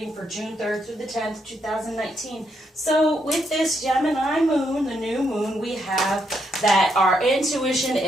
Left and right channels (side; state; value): both; normal; correlation 0.78